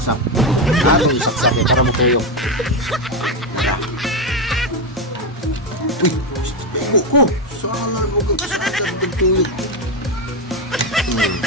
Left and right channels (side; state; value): both; normal; correlation 0.09